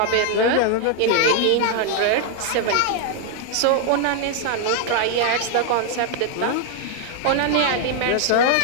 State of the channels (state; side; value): different; both; correlation 0.00